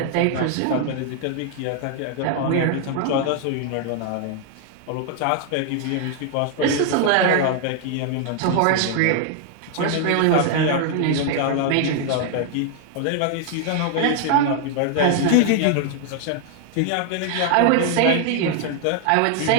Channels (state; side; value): different; both; correlation 0.00